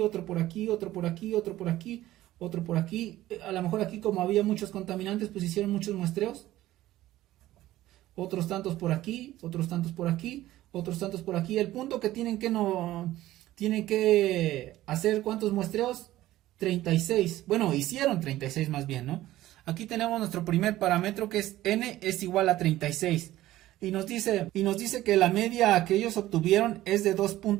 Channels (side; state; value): left; quieter; 15.2 dB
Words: por aquí, otro por aquí, otro por aquí, otro por aquí. A lo mejor aquí, como había muchos contaminantes, pues hicieron muchos muestreos. Otros tantos por aquí, otros tantos por aquí, otros tantos por aquí. El punto que tienen que hacer, ¿cuántos muestreos? 36. Bueno, hicieron 36 más bien, ¿no? Aquí tenemos nuestro primer parámetro, que es n es igual a 36. Y nos dice que la media que ellos obtuvieron es de